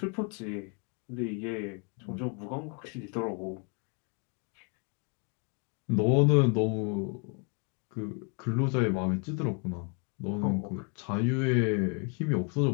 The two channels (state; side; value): quieter; right; 37.7 dB